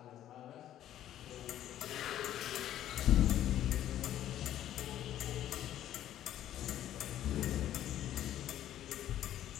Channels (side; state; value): right; quieter; 12.0 dB